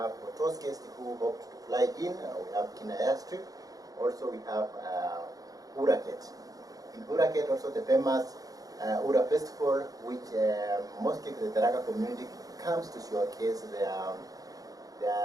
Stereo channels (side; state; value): left; late; 0.17 ms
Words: for those guests who opt to fly in, we have Kina airstrip. Also we have Uraket. In Uraket also the famous Ura festival, which mostly the Tharaka community comes to showcase their